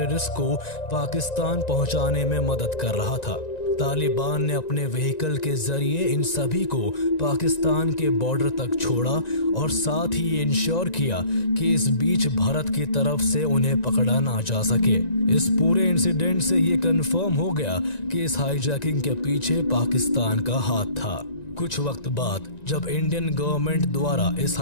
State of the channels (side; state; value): right; late; 1.9 ms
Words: को पाकिस्तान पहुंचाने में मदद कर रहा था। तालिबान ने अपने व्हीकल के जरिए इन सभी को पाकिस्तान के बॉर्डर तक छोड़ा और साथ ही ये इंश्योर किया कि इस बीच भारत की तरफ से उन्हें पकड़ा ना जा सके। इस पूरे इंसिडेंट से ये कंफर्म हो गया कि इस हाईजैकिंग के पीछे पाकिस्तान का हाथ था। कुछ वक्त बाद जब इंडियन गवर्नमेंट द्वारा इस